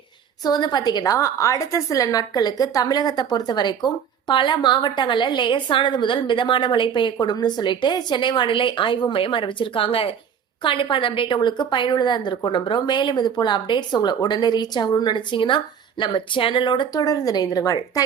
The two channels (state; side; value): quieter; left; 7.8 dB